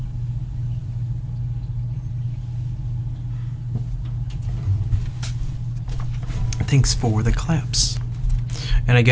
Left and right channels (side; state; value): both; identical; correlation 1.00